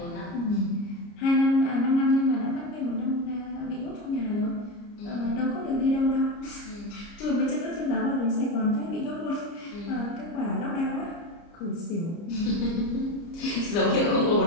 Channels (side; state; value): right; late; 29 ms